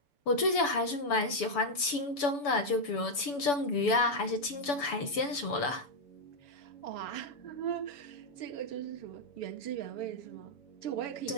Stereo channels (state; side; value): late; right; 7.0 ms